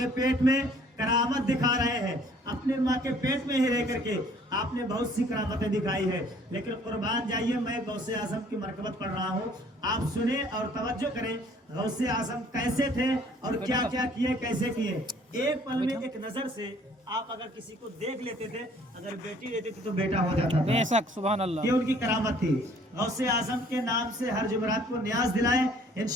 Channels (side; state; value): both; normal; correlation 0.58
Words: पेट में करामत दिखा रहे हैं। अपने माँ के पेट में ही रह करके आपने बहुत सी करामतें दिखाई है। लेकिन कुर्बान जाइए, मैं गौसे आज़म की मरकबत पढ़ रहा हूँ, आप सुने और तवज्जो करें। गौसे आज़म कैसे थे और क्या क्या किए, कैसे किए। एक पल में एक नजर से आप अगर किसी को देख लेते थे, अगर बेटी रहती थी तो बेटा हो जाता था। बेशक, सुभान अल्लाह। ये उनकी करामत थी। गौसे आज़म के नाम से हर जुमरात को न्याज दिलाएं,